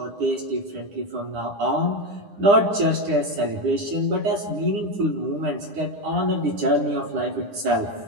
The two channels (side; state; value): left; late; 9.8 ms